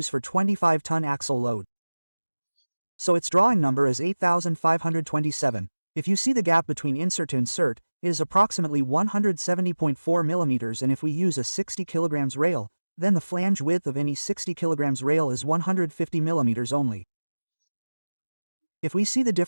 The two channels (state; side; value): inverted; both; correlation -1.00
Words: for 25-ton axle load. So its drawing number is 8527. If you see the gap between insert to insert, it is approximately 170.4 millimeters, and if we use a 60 kilograms rail, then the flange width of any 60 kilograms rail is 150 millimeters only. If we see the